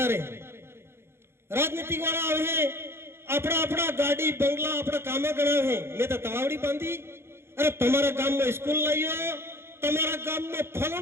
रहे. राजनीतिक वाला आवे है अपना अपना गाड़ी बंगला अपना कामे गणा है. मैं तो तवावड़ी बांधी, अरे तुम्हारा गांव में स्कूल लाइयो, तुम्हारा गांव में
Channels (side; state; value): left; late; 0.12 ms